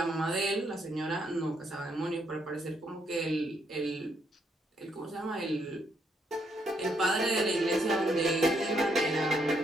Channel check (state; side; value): normal; both; correlation 0.74